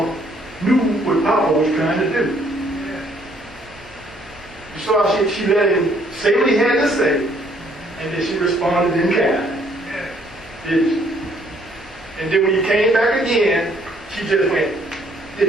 knew what Papa was trying to do. You saw how she let him say what he had to say, and then she responded in kind. Did she? And then when you came back again, she just went,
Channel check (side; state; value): both; normal; correlation 0.65